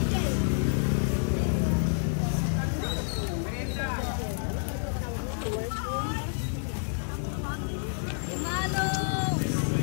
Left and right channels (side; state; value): right; silent; digital silence